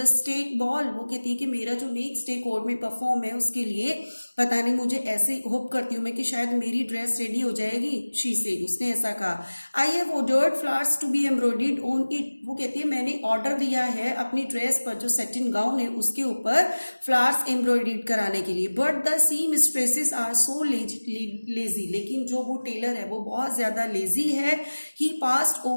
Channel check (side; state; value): both; inverted; correlation -1.00